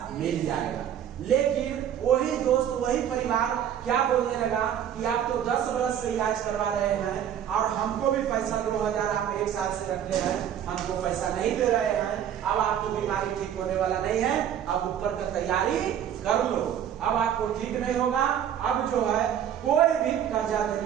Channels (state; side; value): quieter; left; 9.7 dB